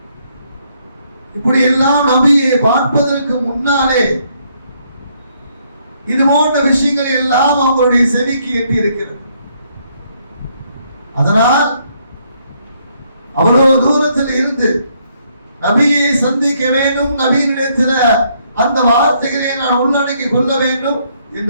இப்படி எல்லாம் நபியை பார்ப்பதற்கு முன்னாலே இது போன்ற விஷயங்கள் எல்லாம் அவங்களுடைய செவிக்கு எட்டி இருக்கிறது. அதனால் அவ்வளவு தூரத்தில் இருந்து நபியை சந்திக்க வேண்டும், நபியினிடத்தில் அந்த வார்த்தைகளை நான் உள்ளடக்கி கொள்ள வேண்டும்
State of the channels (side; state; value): both; inverted; correlation -0.71